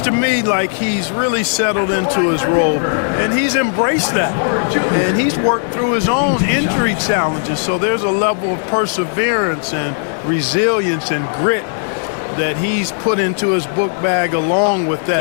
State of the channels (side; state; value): right; silent; 66 dB below the other